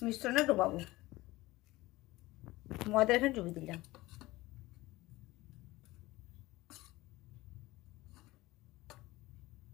মিশ্রণে ডোবাবো। ময়দা এখানে ডুবিয়ে দিলাম।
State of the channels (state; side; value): quieter; right; 19.3 dB